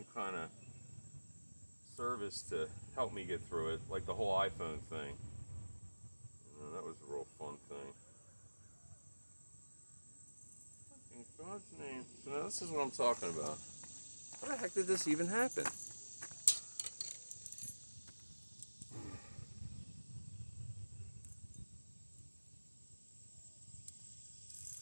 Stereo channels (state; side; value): inverted; both; correlation -1.00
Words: kind of service to help me get through it, like the whole iPhone thing. That was a real fun thing. In God's name. So now this is what I'm talking about. How the heck did this even happen?